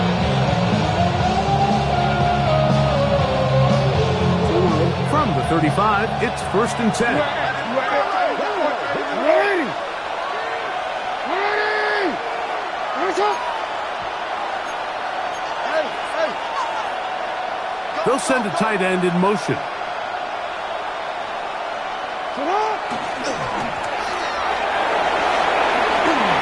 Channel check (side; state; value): both; identical; correlation 1.00